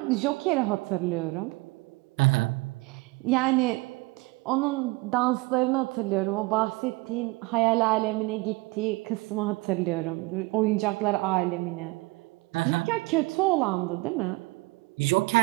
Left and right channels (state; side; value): quieter; left; 23.9 dB